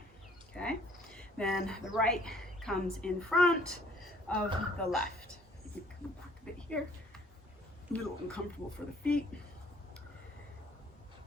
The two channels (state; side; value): normal; both; correlation 0.58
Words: Okay. Then the right comes in front of the left. You can back a bit here. A little uncomfortable for the feet.